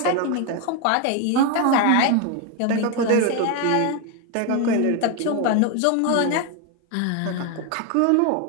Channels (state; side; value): different; both; correlation 0.01